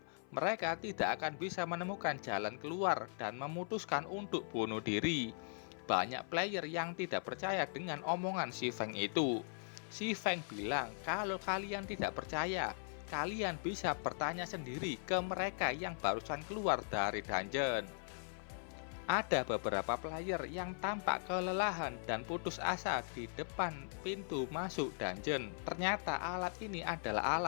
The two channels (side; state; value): right; silent; 51 dB below the other